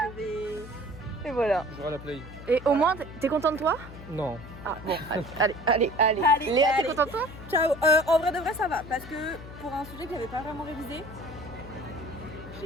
Je vais. Et voilà. Je jouerai à la play. Et au moins, t'es content de toi? Non. Ah bon, allez. Allez, Léa, t'es allez. contente de toi? Ciao. En vrai de vrai, ça va. Parce que pour un sujet que j'avais pas vraiment révisé,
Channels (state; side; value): noise; left; hum, 14 dB below the sound